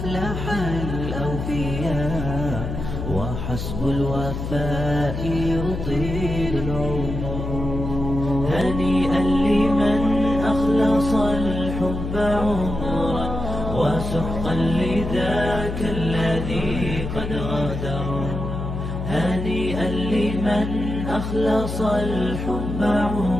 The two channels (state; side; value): noise; left; hum, 5 dB below the sound